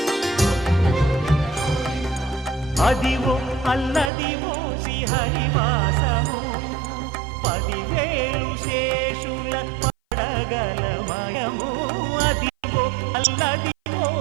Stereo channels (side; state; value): left; drops out; at 4.1 s